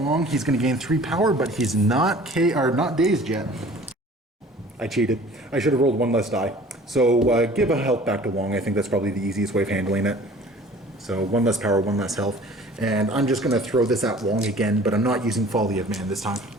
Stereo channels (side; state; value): both; normal; correlation 0.48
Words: He's going to gain 3 power, but he's not not dazed yet. I cheated. I should have rolled 1 less die. So give a health back to Wong. I think that's probably the easiest way of handling it. So 1 less power, 1 less health. And I'm just going to throw this at Wong again, but I'm not using Folly of Man this time.